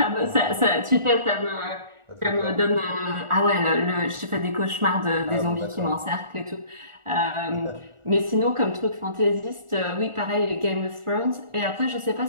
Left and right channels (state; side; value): late; left; 1.4 ms